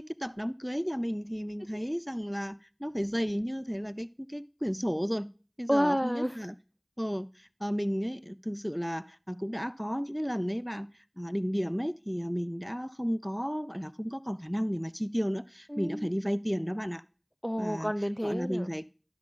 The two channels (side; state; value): both; identical; correlation 1.00